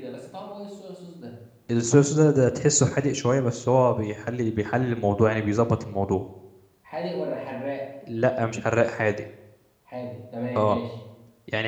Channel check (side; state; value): both; identical; correlation 1.00